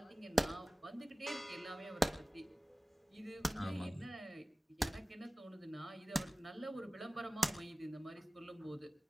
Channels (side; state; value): both; normal; correlation 0.97